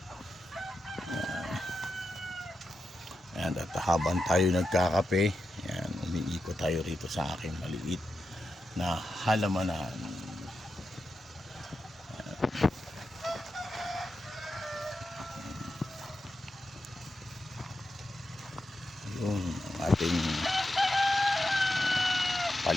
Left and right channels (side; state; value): both; normal; correlation 0.88